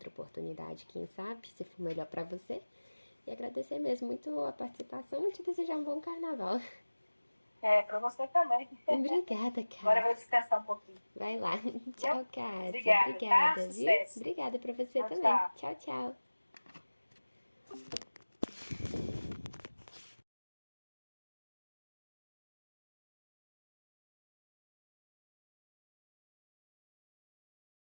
oportunidade, quem sabe, se for melhor para você. E agradecer mesmo muito a participação e te desejar um bom carnaval. Para você também. Obrigada, Agora eu vou Cássia. descansar um pouquinho. Vai lá. Viu? Tchau, Cássia. Obrigada, tá? Obrigada, viu? Sucesso. Obrigada para você Tchau, também. tchau. Tchau, tchau.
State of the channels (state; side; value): inverted; both; correlation -1.00